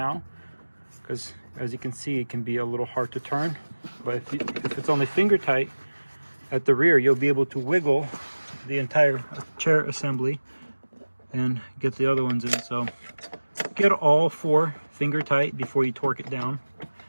because as you can see, it can be a little hard to turn. But if it's only finger tight at the rear, you'll be able to wiggle the entire chair assembly and get the other ones in. So get all 4 finger tight before you torque it down.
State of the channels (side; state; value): both; inverted; correlation -1.00